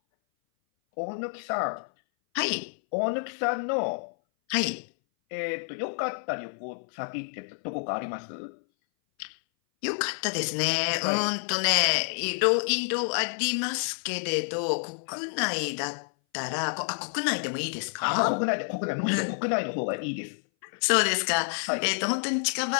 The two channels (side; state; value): right; silent; 58 dB below the other